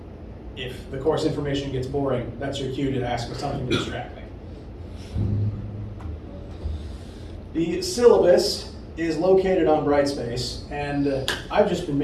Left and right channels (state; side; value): identical; both; correlation 1.00